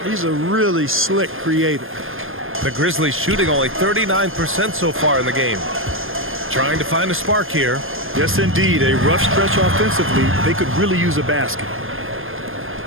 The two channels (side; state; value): left; late; 0.60 ms